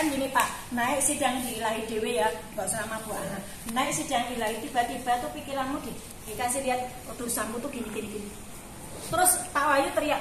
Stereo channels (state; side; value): identical; both; correlation 1.00